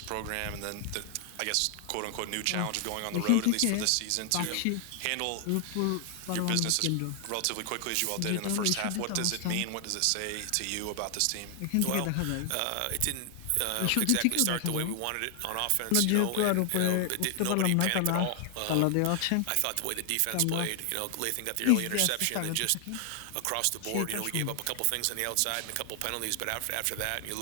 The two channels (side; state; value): both; different; correlation 0.00